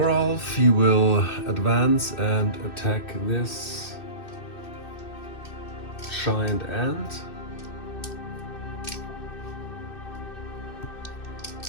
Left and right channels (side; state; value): right; late; 2.6 ms